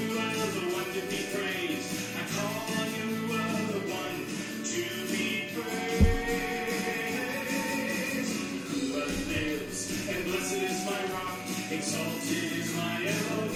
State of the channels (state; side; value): identical; both; correlation 1.00